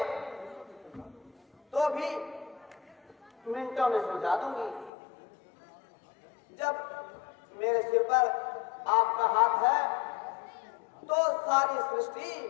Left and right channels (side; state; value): right; drops out; at 4.9 s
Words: तो भी मिनटों में सुलझा दूंगी। जब मेरे सिर पर आपका हाथ है तो सारी सृष्टि